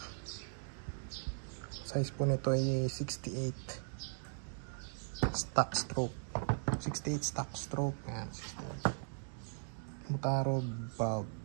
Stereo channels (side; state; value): left; silent; digital silence